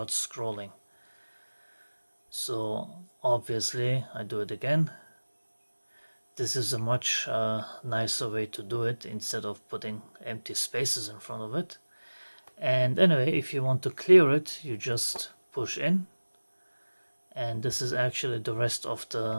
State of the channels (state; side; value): inverted; both; correlation -1.00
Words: scrolling. So obviously I do it again. This is a much nicer way to do it, instead of putting empty spaces in front of it. And anyway, if you want to clear it, you just push in, and this is actually the rest of